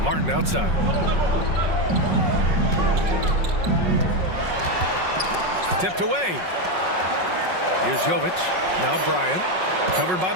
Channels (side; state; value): left; late; 5.4 ms